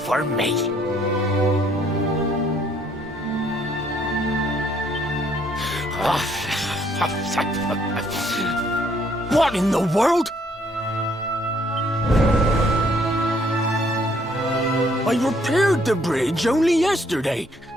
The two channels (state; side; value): normal; both; correlation 0.66